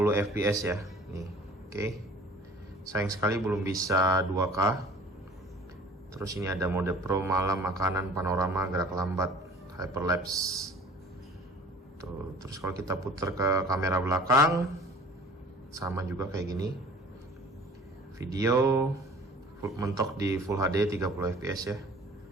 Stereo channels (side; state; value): both; normal; correlation 0.48